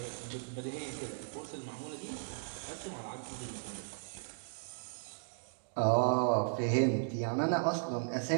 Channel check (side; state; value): left; silent; digital silence